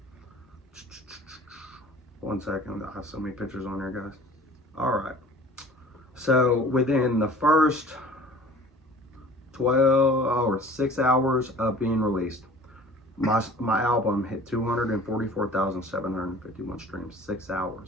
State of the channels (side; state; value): both; normal; correlation 0.46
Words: 1 second, I have so many pictures on there, guys. All right. So within the first 6 hours of being released, my album hit 244,751 streams. 6